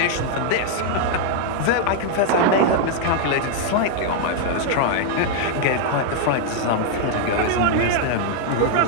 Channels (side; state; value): both; different; correlation 0.00